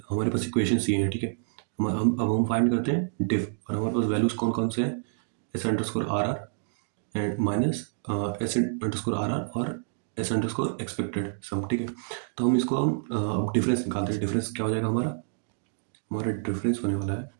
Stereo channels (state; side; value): silent; left; digital silence